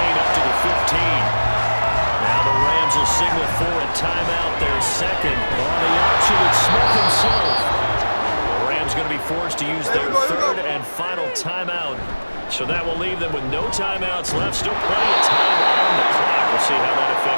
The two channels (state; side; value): inverted; both; correlation -1.00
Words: up to the 15. Now the Rams will signal for a timeout. Their second on the option. It's Smith himself. The Rams going to be forced to use their 3rd and final timeout. So that will leave them with no timeouts left. Still plenty of time on the clock. We'll see how that